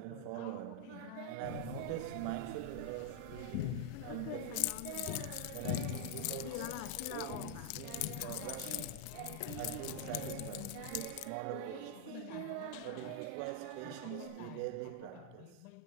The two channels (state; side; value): different; both; correlation 0.00